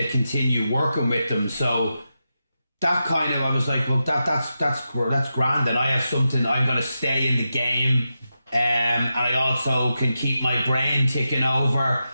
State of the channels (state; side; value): inverted; both; correlation -0.89